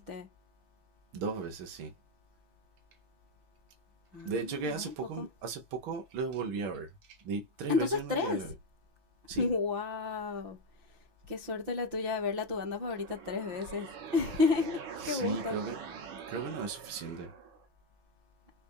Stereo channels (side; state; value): left; late; 6.0 ms